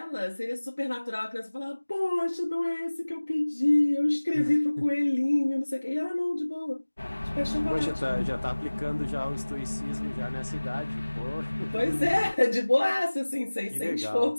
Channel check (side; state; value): both; inverted; correlation -1.00